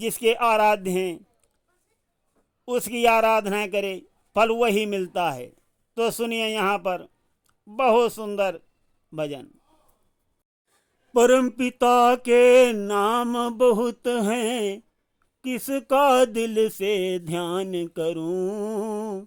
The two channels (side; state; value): both; identical; correlation 1.00